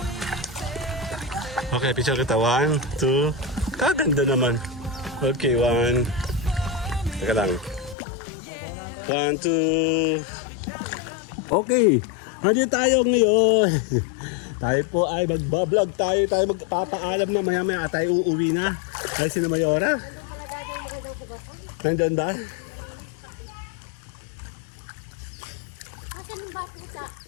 Okay, picture kita. 1, 2. Kaganda naman. Okay, 1. Teka lang. 1, 2. Okay. Nandito tayo ngayon. Tayo po ay magbablog tayo. Tayo magpapaalam na maya-maya tayo uuwi na. Dahil si Mayora. Nandun ba? Asan yung bata sa?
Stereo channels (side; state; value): right; drops out; at 8.0 s